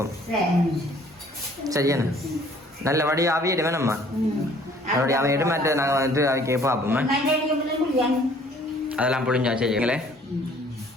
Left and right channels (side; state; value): both; normal; correlation 0.56